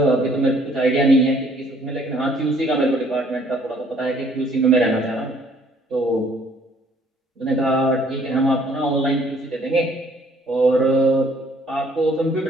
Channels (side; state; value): both; normal; correlation 0.61